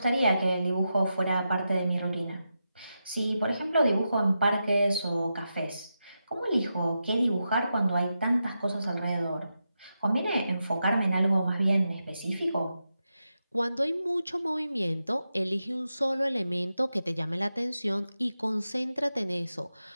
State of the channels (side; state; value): both; inverted; correlation -0.88